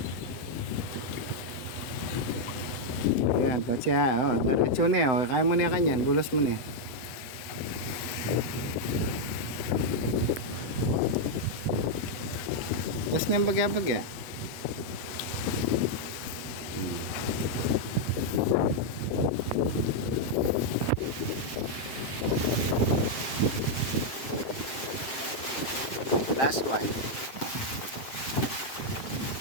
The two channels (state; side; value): late; right; 7.7 ms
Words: yan, tatya, oh, diretso na, oh, kaya mo na kanyan, bulos mo na. Tapos na yung bagya-bagya. Last one.